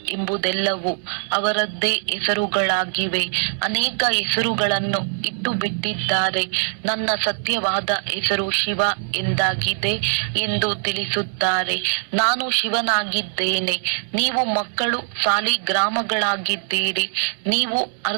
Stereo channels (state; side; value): silent; left; digital silence